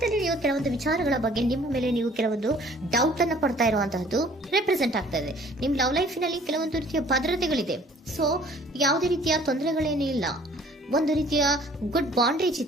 ಅಲ್ಲಿ ನೀವು ಕೆಲವೊಂದು ವಿಚಾರಗಳ ಬಗ್ಗೆ ನಿಮ್ಮ ಮೇಲೆ ನೀವು ಕೆಲವೊಂದು ಡೌಟ್ ಅನ್ನ ಪಡ್ತಾ ಇರುವಂತಹದ್ದು ರೆಪ್ರೆಸೆಂಟ್ ಆಗ್ತಾ ಇದೆ. ನಿಮ್ ಲವ್ ಲೈಫಿನಲ್ಲಿ ಕೆಲವೊಂದು ರೀತಿಯ ಭದ್ರತೆಗಳಿದೆ. ಸೊ ಯಾವುದೇ ರೀತಿಯ ತೊಂದರೆಗಳೇನೂ ಇಲ್ಲ, ಒಂದು ರೀತಿಯ ಗುಡ್ ಬಾಂಡೇಜ್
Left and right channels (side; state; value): both; normal; correlation 0.54